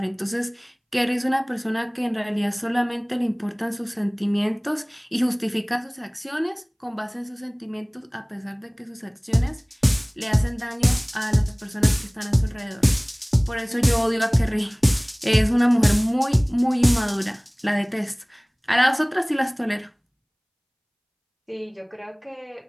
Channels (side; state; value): both; identical; correlation 1.00